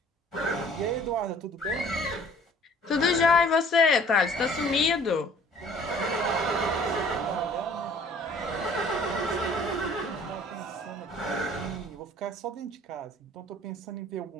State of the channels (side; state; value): both; normal; correlation 0.53